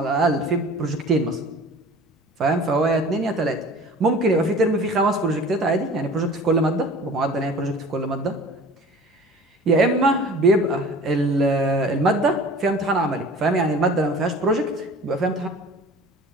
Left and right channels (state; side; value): normal; both; correlation 0.43